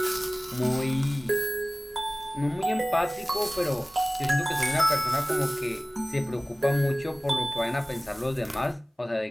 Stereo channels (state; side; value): normal; both; correlation 0.98